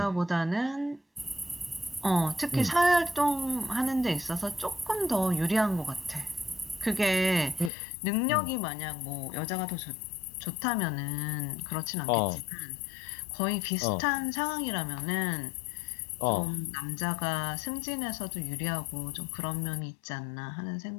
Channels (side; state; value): right; drops out; at 7.7 s